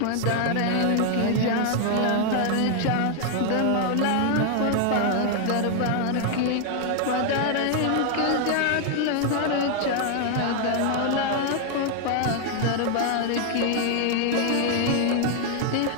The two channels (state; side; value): different; both; correlation 0.00